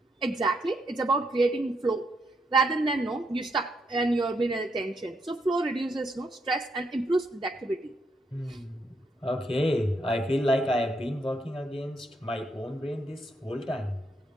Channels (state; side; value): normal; both; correlation 0.77